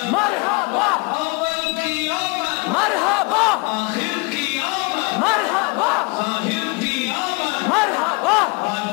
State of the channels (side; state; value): right; quieter; 28.5 dB